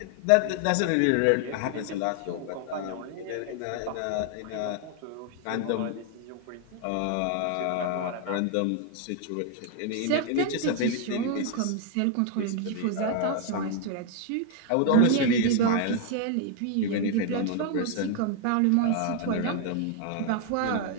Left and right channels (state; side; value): different; both; correlation 0.00